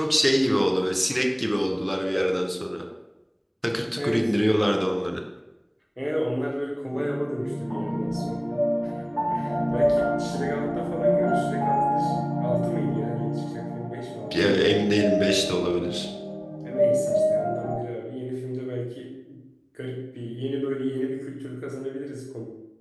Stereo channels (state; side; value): identical; both; correlation 1.00